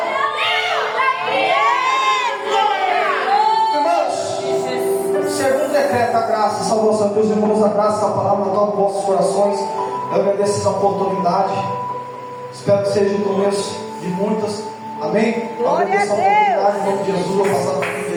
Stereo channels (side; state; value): both; identical; correlation 1.00